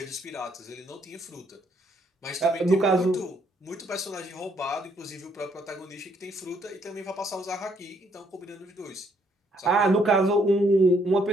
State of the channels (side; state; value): both; normal; correlation 0.70